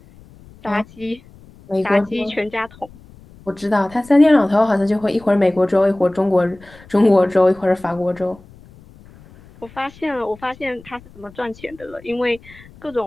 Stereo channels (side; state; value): left; noise; rumble, 23 dB below the sound